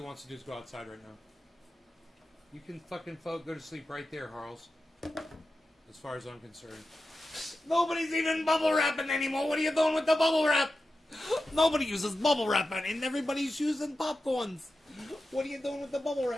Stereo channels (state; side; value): normal; both; correlation 0.92